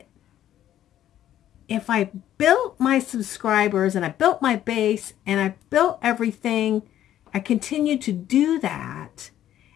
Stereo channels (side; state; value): right; quieter; 11.8 dB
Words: if I built my subscribers and I built my base and I built everything, I continue to do that.